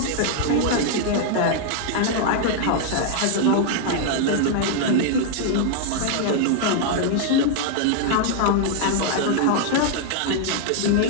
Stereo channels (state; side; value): different; both; correlation 0.00